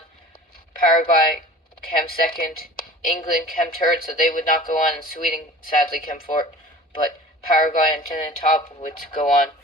Paraguay came second. England came third, so they would not go on, and Sweden sadly came fourth. But Paraguay and Trinidad and Tobago would go on.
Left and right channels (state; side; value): normal; both; correlation 0.42